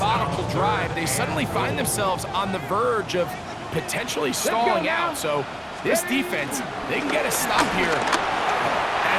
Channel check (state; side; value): identical; both; correlation 1.00